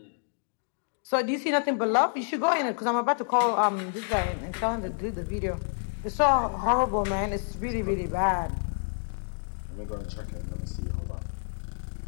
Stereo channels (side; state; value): right; silent; digital silence